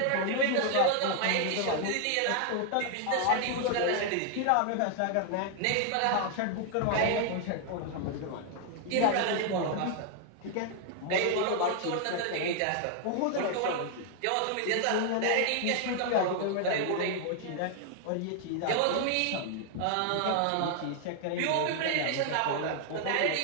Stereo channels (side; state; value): both; different; correlation 0.00